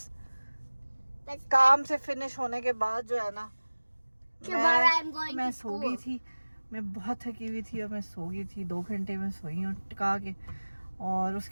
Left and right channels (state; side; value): inverted; both; correlation -1.00